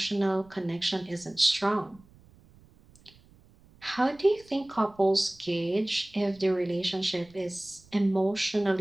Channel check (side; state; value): right; noise; rumble, 27 dB below the sound